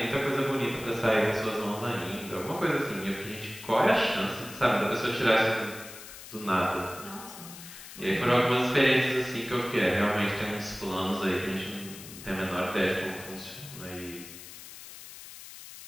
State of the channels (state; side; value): noise; left; hiss, 14 dB below the sound